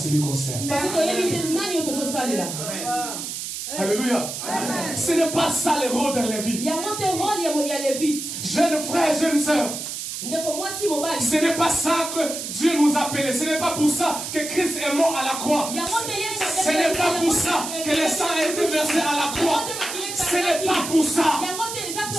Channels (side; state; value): right; noise; hiss, 6 dB below the sound